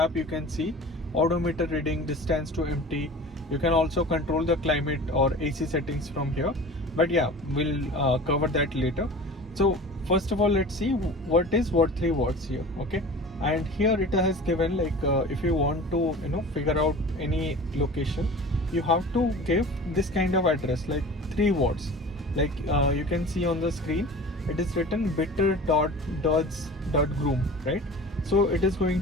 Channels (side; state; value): both; normal; correlation 0.39